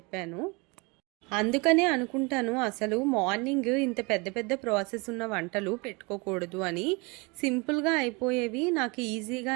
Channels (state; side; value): quieter; left; 28.0 dB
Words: అందుకనే అనుకుంటాను అసలు మార్నింగ్ ఇంత పెద్ద పెద్ద ప్రాసెస్ ఉన్న వంటలు పెట్టుకోకూడదు అని. సింపుల్‌గా అయిపోయేవి, నాకు ఈజీగా